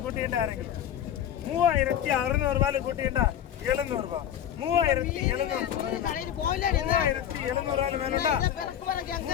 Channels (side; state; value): right; quieter; 10.2 dB